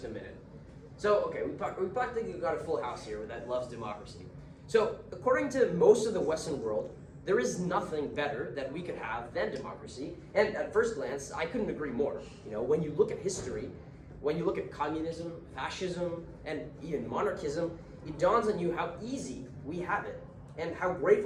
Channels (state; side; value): identical; both; correlation 1.00